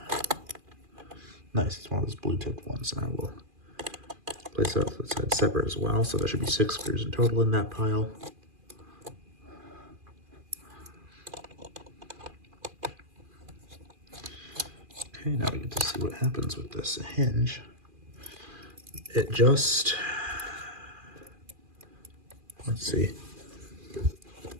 Nice, it's one of those blue tipped ones, and I will place it off the side separate as well. So there should be 6 screws in total in that pile. Okay, now we get to see what happens with this hinge. It just, let's see.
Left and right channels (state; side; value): late; left; 2.4 ms